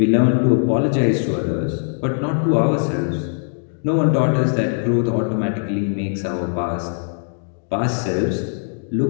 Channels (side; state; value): right; silent; digital silence